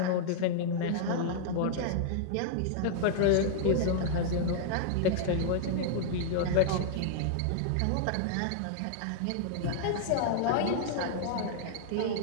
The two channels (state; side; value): different; both; correlation -0.01